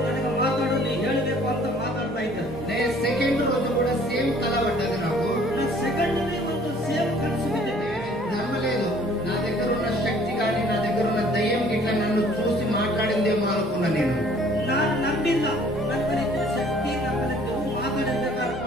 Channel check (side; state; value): both; normal; correlation 0.56